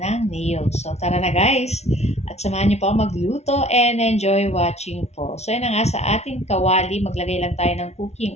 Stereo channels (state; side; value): late; right; 0.31 ms